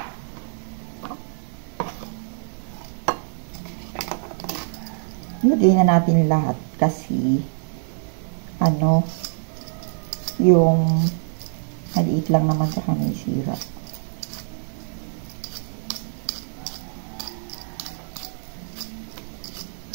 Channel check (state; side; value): silent; left; digital silence